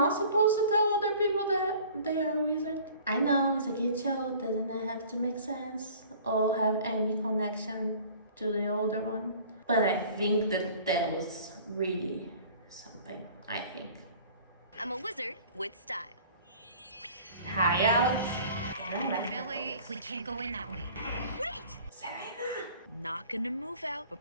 supposed to tell other people that they are a wizard? I know, it's a kid show, doesn't have to make sense or have any connection to the older one. But I think that was really something, I think. I'm a wizard with style. Hi, Alex. Billy, we can't go in that way. Wait! Selena! Not gonna move out, but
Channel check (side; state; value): both; inverted; correlation -0.48